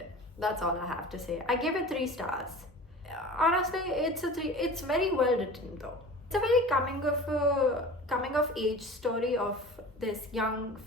That's all I have to say. I gave it 3 stars. Honestly, it's a 3. It's very well written though. It's a very coming of age story of this young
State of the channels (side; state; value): both; normal; correlation 0.38